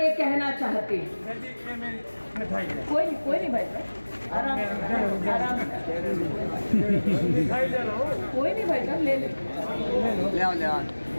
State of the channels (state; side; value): inverted; both; correlation -1.00